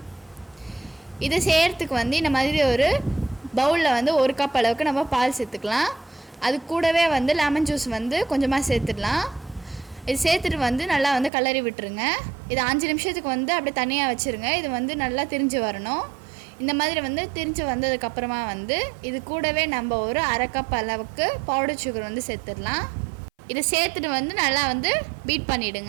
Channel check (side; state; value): left; drops out; at 11.3 s